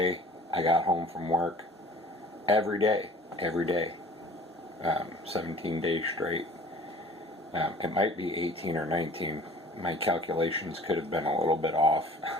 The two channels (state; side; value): normal; both; correlation 0.48